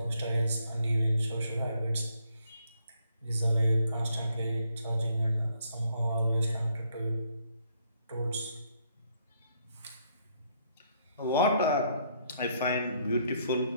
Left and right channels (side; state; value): both; inverted; correlation -0.70